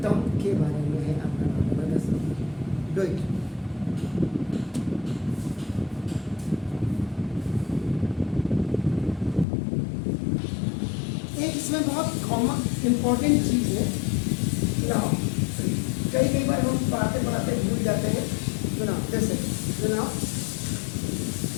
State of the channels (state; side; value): drops out; right; at 9.5 s